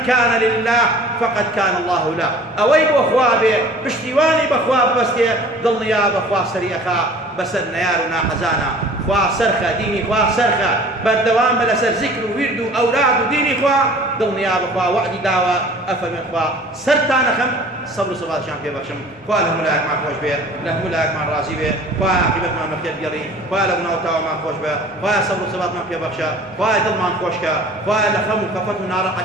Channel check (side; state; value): both; normal; correlation 0.47